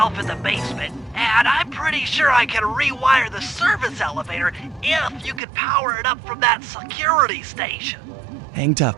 in the basement, and I'm pretty sure I can rewire the service elevator if you can power it up from that security station. Hang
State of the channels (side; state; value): left; drops out; at 5.4 s